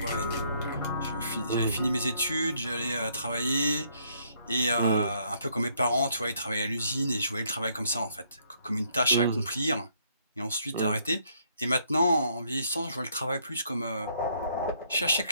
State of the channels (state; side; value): inverted; both; correlation -0.69